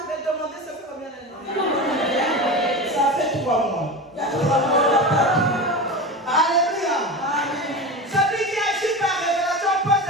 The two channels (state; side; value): normal; both; correlation 0.26